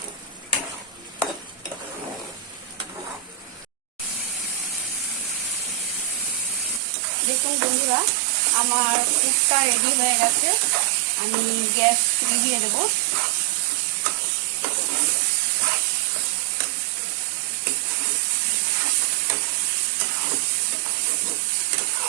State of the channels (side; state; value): left; drops out; at 6.8 s